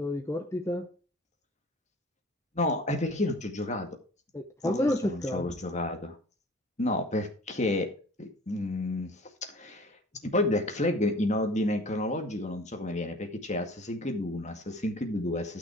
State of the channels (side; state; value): both; normal; correlation 0.46